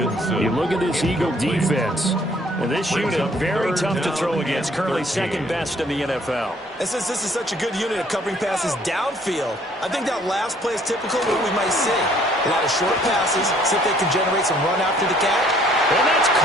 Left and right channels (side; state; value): both; normal; correlation 0.61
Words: You look at this Eagle defense. And this unit, very tough to throw against. Currently second best in the NFL. And since this is such a good unit of covering passes downfield, I think that last play is typical of what we might see. A lot of short passes, see if they can generate some run after the catch. And that's